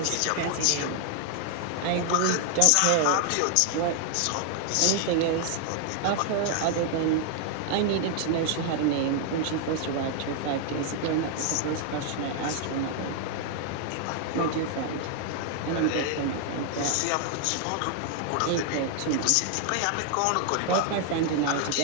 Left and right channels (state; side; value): different; both; correlation 0.00